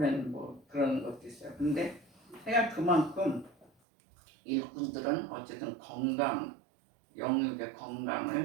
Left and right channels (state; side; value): drops out; left; at 3.7 s